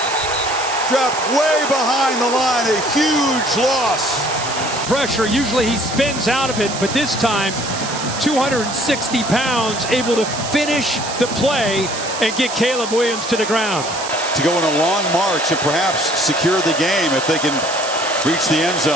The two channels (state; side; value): noise; right; hiss, 8 dB below the sound